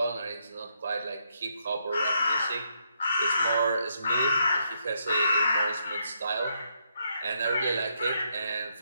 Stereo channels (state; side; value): inverted; both; correlation -0.76